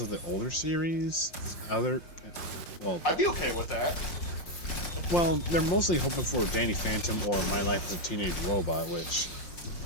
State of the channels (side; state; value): right; late; 5.7 ms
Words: of the older series. Well, I'd be okay with that. well, they're mostly hoping for Danny Phantom or My Life as a Teenage Robot, which,